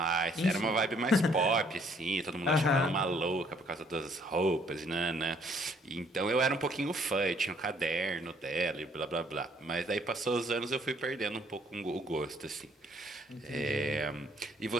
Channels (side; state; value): both; normal; correlation 0.64